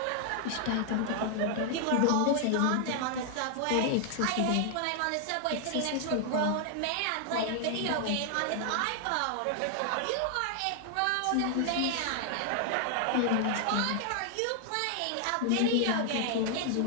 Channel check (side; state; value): both; different; correlation 0.00